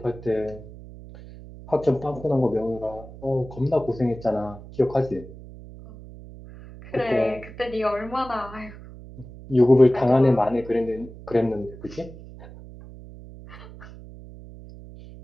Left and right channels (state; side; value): noise; right; hum, 16 dB below the sound